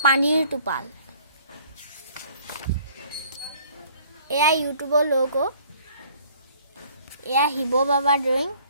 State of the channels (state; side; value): inverted; both; correlation -0.56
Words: পানীৰ টোপাল। এয়া ইউটিউবৰ লোগো। এয়া শিৱ বাবা ড্ৰয়িং